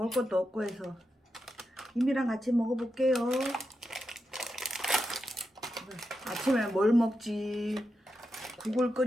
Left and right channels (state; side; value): normal; both; correlation 0.87